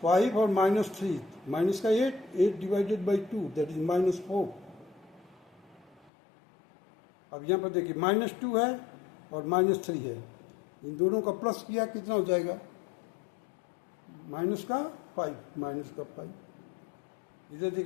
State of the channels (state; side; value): drops out; right; at 6.1 s